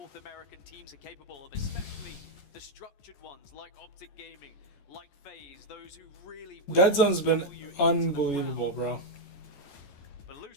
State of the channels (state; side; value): late; right; 14 ms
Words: American teams are capable of, especially the structured ones like Optic Gaming, like FaZe, those who really... Dead Zone's been unbelievable, bro. But